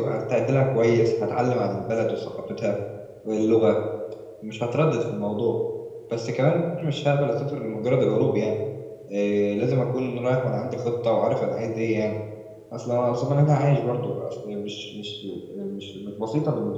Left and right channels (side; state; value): both; identical; correlation 1.00